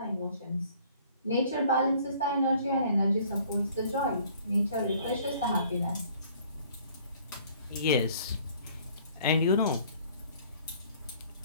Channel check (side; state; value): both; inverted; correlation -0.56